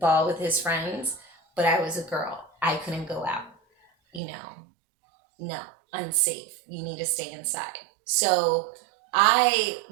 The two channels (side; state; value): left; drops out; at 4.2 s